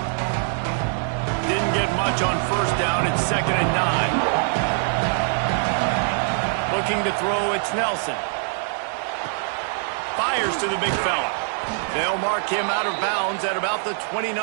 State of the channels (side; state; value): left; silent; 63 dB below the other